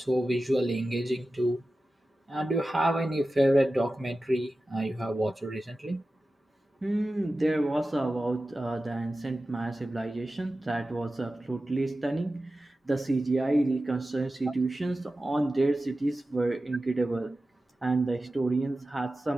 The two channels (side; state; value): both; normal; correlation 0.94